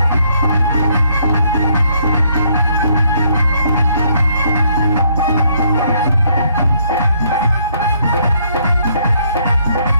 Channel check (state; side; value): inverted; both; correlation -0.69